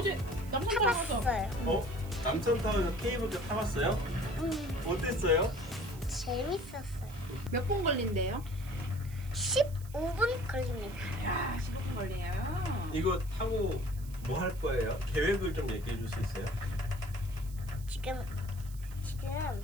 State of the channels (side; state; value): right; noise; hiss, 20 dB below the sound